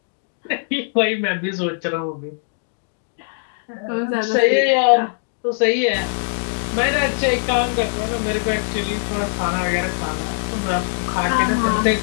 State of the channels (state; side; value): silent; right; digital silence